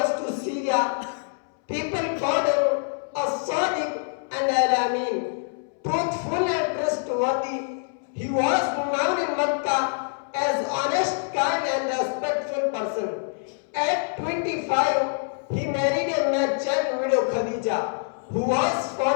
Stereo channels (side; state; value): right; silent; 61 dB below the other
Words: to Syria. People called him a Sadiq and Al-Amin, truthful and trustworthy. He was known in Mecca as honest, kind and respectful person. At 25, he married a merchant widow Khadija, who was